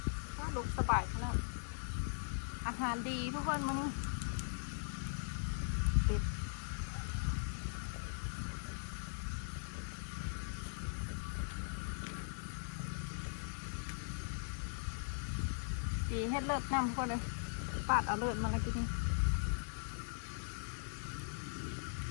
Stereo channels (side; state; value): right; silent; digital silence